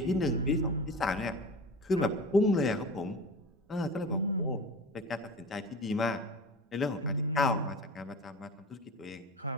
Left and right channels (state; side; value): normal; both; correlation 0.34